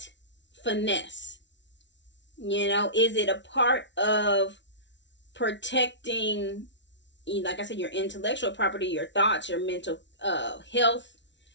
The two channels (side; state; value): right; late; 0.52 ms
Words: finesse? Is it a part of protecting, like I said, your intellectual property, your thoughts, your mental health,